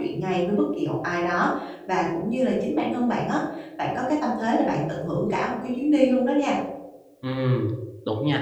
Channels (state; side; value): identical; both; correlation 1.00